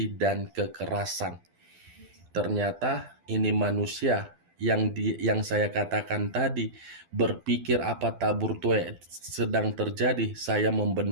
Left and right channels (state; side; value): late; left; 12 ms